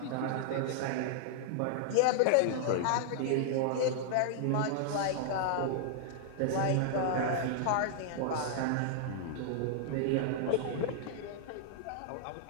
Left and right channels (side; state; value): both; different; correlation -0.01